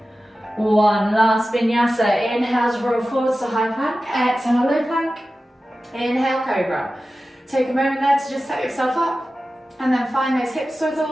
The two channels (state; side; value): normal; both; correlation 0.94